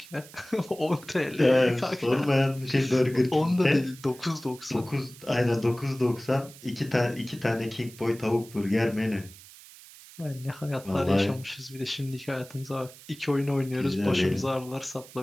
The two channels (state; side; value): noise; right; hiss, 20 dB below the sound